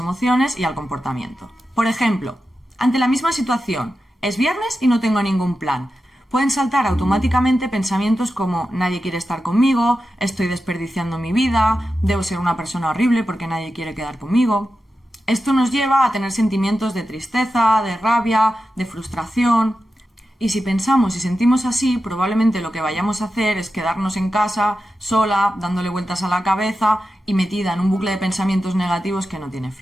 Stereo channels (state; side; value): normal; both; correlation 0.91